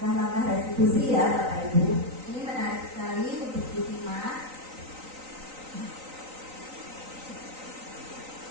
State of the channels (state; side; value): late; left; 3.9 ms